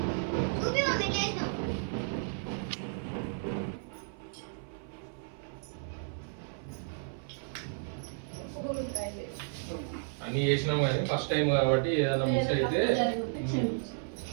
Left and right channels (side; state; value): left; silent; 56 dB below the other